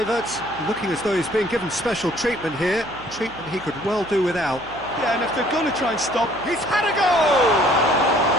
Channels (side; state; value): right; noise; hum, 20 dB below the sound